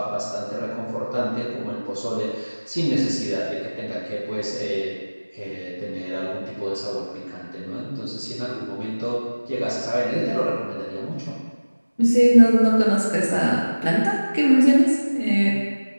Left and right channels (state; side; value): inverted; both; correlation -1.00